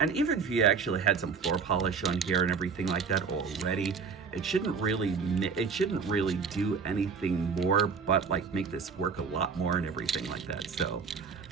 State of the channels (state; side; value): quieter; left; 5.6 dB